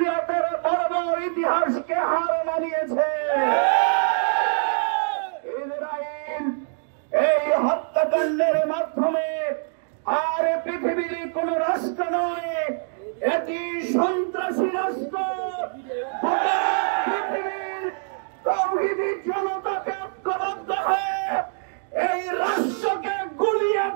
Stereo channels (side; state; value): left; silent; digital silence